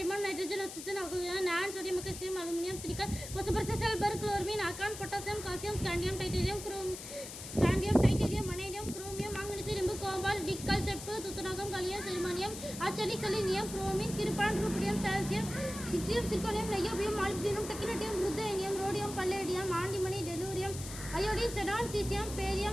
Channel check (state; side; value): noise; left; hiss, 10 dB below the sound